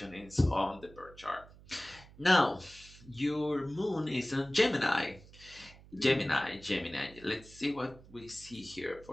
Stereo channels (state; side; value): noise; right; hum, 21 dB below the sound